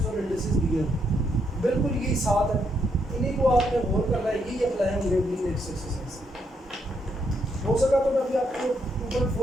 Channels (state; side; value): normal; both; correlation 0.76